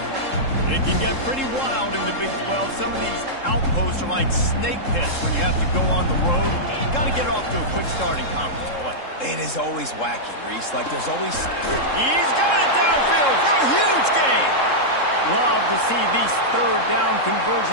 It can get pretty wild in the Big 12. Some of these outposts are like snake pits when you have to go on the road. Got to get off to a quick start in conference play. It is always wacky, Reese. Like there's always... He's got it downfield for a huge gain. Love to see these 3rd down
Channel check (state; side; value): late; right; 3.7 ms